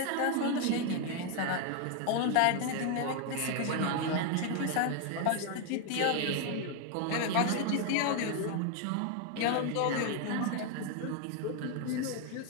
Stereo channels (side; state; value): both; different; correlation 0.01